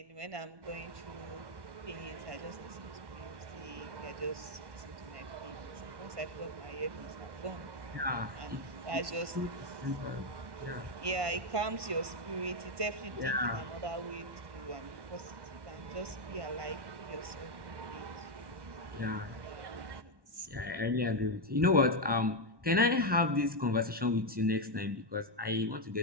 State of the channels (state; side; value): late; left; 1.1 ms